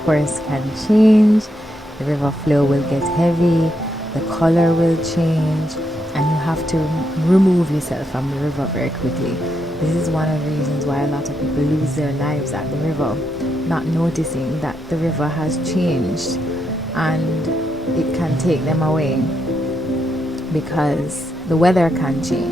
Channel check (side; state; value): both; normal; correlation 0.81